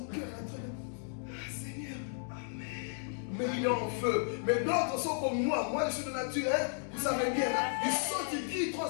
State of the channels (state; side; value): silent; right; digital silence